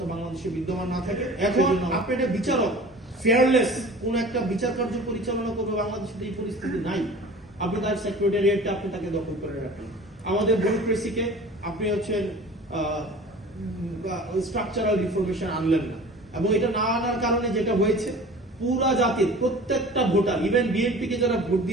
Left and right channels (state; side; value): normal; both; correlation 0.42